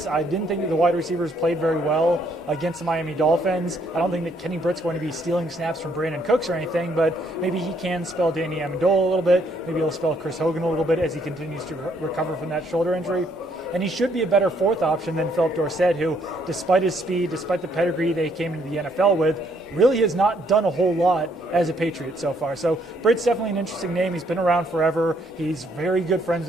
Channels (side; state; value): both; normal; correlation 0.69